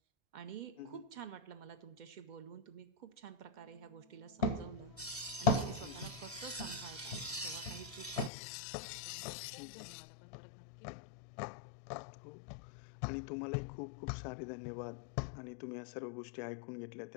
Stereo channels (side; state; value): right; drops out; at 8.3 s